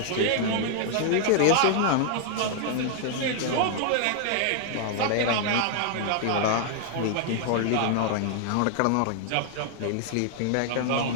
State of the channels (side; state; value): both; different; correlation 0.00